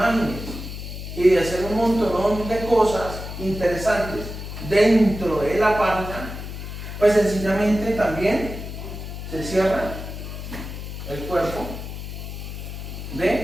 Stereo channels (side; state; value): left; noise; hum, 8 dB below the sound